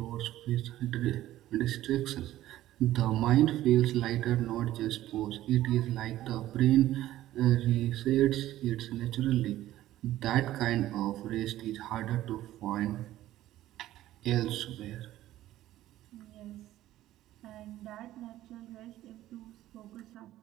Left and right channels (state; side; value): quieter; left; 14.4 dB